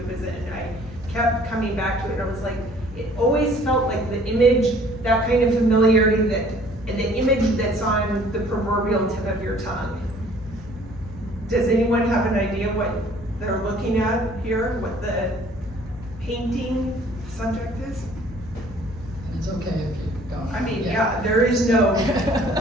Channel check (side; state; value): both; normal; correlation 0.55